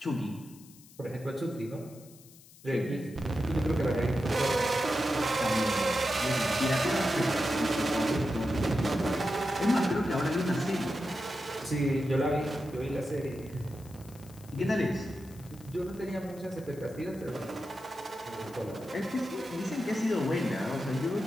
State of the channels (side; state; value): left; noise; hiss, 23 dB below the sound